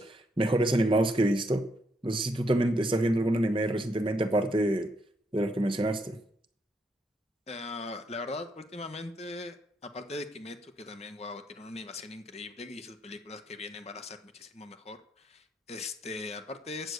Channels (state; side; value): normal; both; correlation 0.76